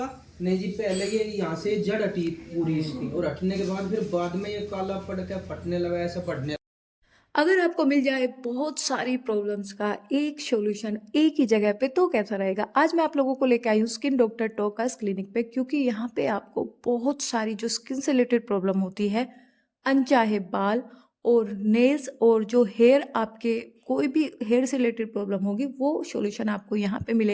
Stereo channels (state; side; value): identical; both; correlation 1.00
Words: नहीं जी, पहले ये यहाँ से जड़ हटी पूरी इसकी, और हटने के बाद फिर बाद में ये काला पड़ के फटने लगा, ऐसा फटने। अगर आपको मिल जाए बहुत सारी प्रॉब्लम्स का एक सॉल्यूशन एक ही जगह पे तो कैसा रहेगा। आज मैं आप लोगों को लेकर आई हूँ स्किन डॉक्टर टोकास क्लिनिक पे, क्योंकि यहाँ पे आपको बहुत सारी जो स्किन से रिलेटेड प्रॉब्लम होती है, अनचाहे बाल और नेल्स और जो हेयर, आपके कोई भी हेयर से रिलेटेड प्रॉब्लम होगी वो सॉल्यूशन आपको यहाँ पे